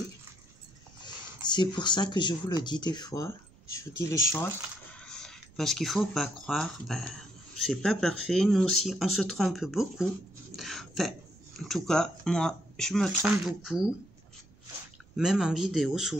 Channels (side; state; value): right; noise; rumble, 26 dB below the sound